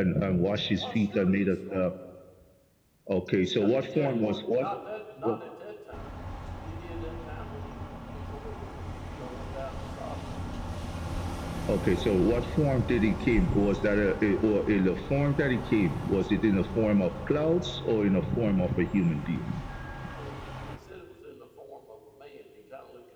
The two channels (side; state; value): both; identical; correlation 1.00